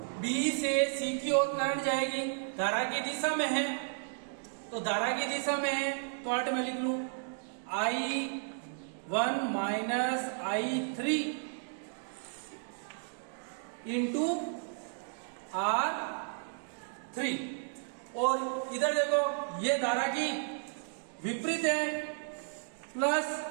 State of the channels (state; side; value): silent; left; digital silence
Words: B से C की ओर करंट जाएगी, धारा की दिशा में है, तो धारा की दिशा में है तो अर्थ में लिख लूं I1 minus I3 into R3। और इधर देखो ये धारा की विपरीत है, plus